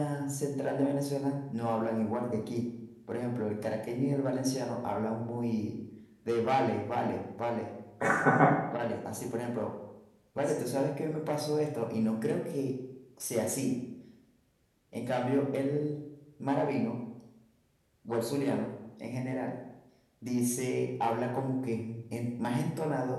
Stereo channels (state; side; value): identical; both; correlation 1.00